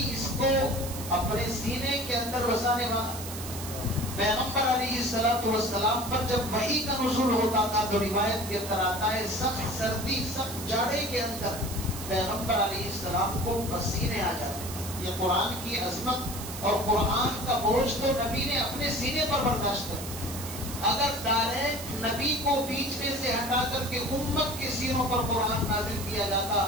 اس کو اپنے سینے کے اندر بسانے والا؟ پیغمبر علیہ السلام پر جب وحی کا نزول ہوتا تھا تو روایت کے اندر آتا ہے سخت سردی سخت جاڑے کے اندر پیغمبر علیہ السلام کو پسینے آ جاتے تھے۔ یہ قرآن کی عظمت اور قرآن کا بوجھ تو نبی نے اپنے سینے پر برداشت کر، اگر ڈائریکٹ نبی کو بیچ میں سے ہٹا کر کے امت کے سینوں پر قرآن نازل کیا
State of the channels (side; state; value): right; noise; hiss, 10 dB below the sound